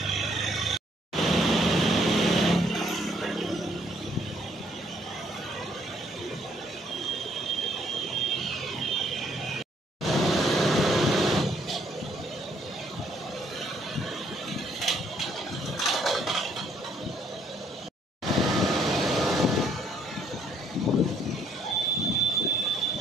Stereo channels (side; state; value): both; normal; correlation 0.67